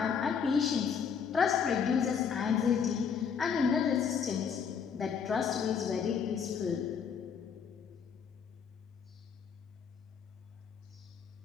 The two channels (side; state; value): right; quieter; 6.8 dB